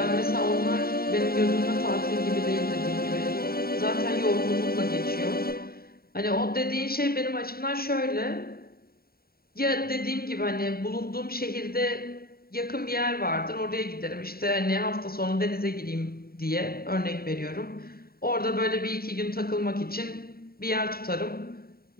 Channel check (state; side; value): late; right; 0.44 ms